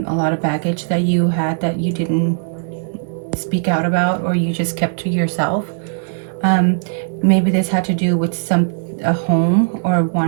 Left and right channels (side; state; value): left; silent; digital silence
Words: lot of baggage that you had that you didn't speak out about, or you just kept to yourself. Um, Maybe this had to do with a home, or